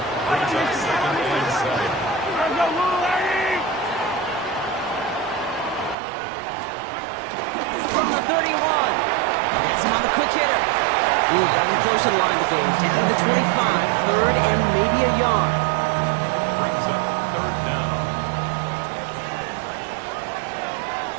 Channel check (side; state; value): left; drops out; at 6.0 s